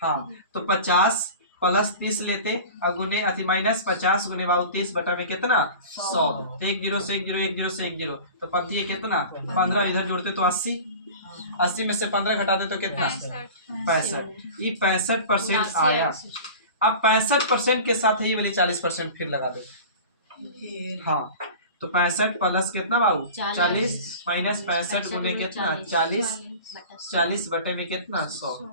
हाँ तो 50 प्लस 30 लेते और गुने अति माइनस 50 गुने बाबू 30 बटा में कितना 100, तो 1 0 से 1 0 1 0 से 1 0, तो पंक्ति है कितना 15, इधर जोड़ते तो 80 में से 15 घटा दे तो कितना 65, ये 65% आया। अब 65% के साथ ही वाली 40% फिर लगा दे, हाँ तो 65 प्लस कितना बाबू 40 माइनस 65 गुने कितना 40 बटे में कितना 100,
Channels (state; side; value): inverted; both; correlation -0.37